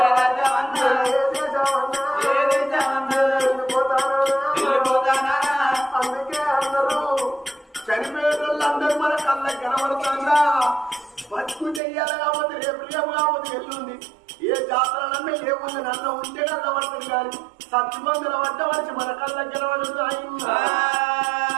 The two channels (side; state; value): left; drops out; at 11.8 s